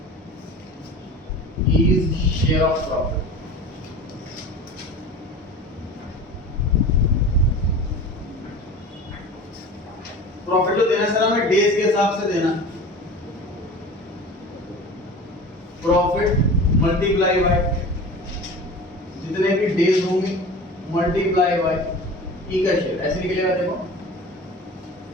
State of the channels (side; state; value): both; normal; correlation 0.37